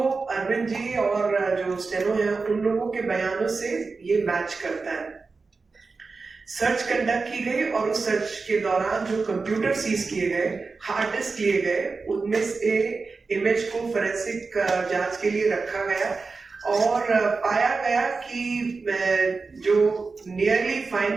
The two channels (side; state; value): left; quieter; 4.3 dB